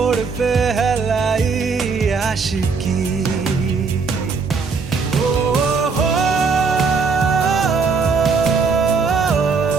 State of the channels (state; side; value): quieter; left; 4.9 dB